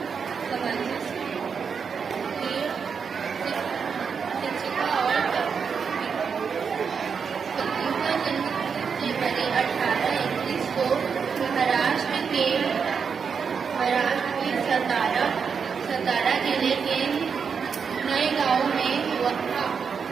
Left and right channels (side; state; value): left; quieter; 6.1 dB